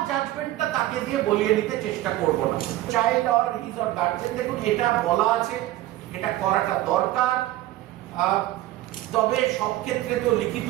জাজমেন্টটা তাকে দিয়ে বলিয়ে নিতে চেষ্টা করব না। Child or his or guardian, দেখুন এটা বলা আছে, এটা করাটা দরকার। তবে সব ক্ষেত্রে তো লিখিত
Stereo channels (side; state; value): left; quieter; 15.5 dB